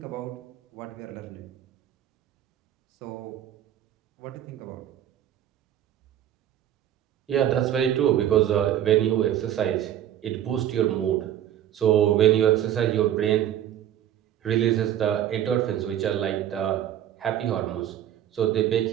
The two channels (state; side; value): quieter; left; 11.2 dB